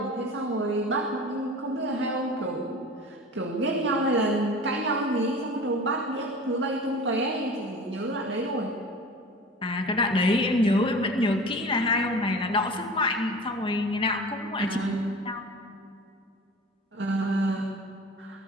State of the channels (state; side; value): normal; both; correlation 0.38